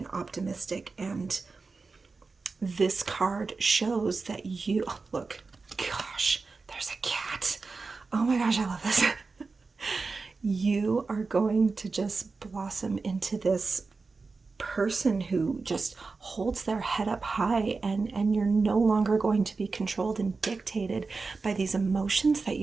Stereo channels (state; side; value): quieter; left; 4.2 dB